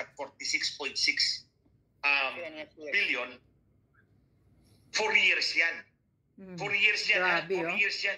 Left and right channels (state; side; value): identical; both; correlation 1.00